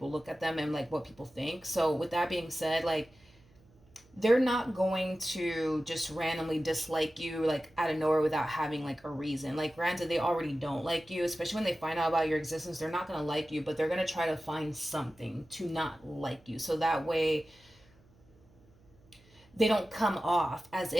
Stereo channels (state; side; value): noise; right; hum, 29 dB below the sound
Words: look at them and like what people think. So with that being said, like they're not going to just randomly dislike you like out of nowhere without having like a reason. Like granted, they already don't like you, especially when they find out about your existence. They're not going to like you, but they're going to try to find something to not like you, so that way they don't come off as